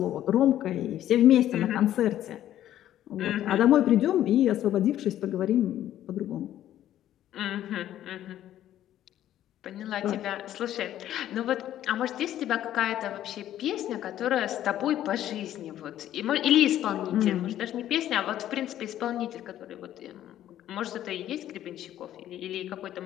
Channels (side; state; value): right; quieter; 12.2 dB